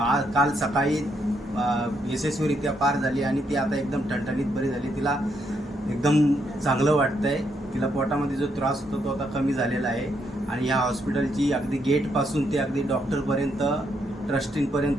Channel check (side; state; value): both; normal; correlation 0.76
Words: काल सकाळी यशस्वीरित्या पार झाली आणि ती आता एकदम ठणठणीत बरी झाली. तिला एकदम चांगलं वाटतं आहे. तिला पोटामध्ये जो त्रास होतो तो आता कमी झालेला आहे. आणि ह्या हॉस्पिटलची अगदी गेटपासून ते अगदी डॉक्टरपर्यंत,